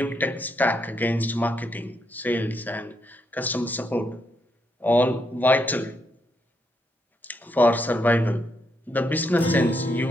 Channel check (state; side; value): normal; both; correlation 0.78